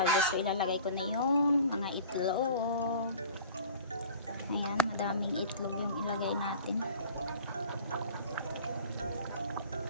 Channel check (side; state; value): both; inverted; correlation -0.44